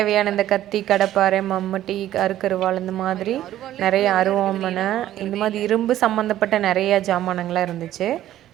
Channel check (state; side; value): quieter; left; 12.9 dB